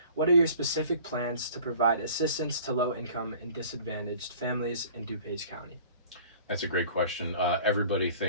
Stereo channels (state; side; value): inverted; both; correlation -0.48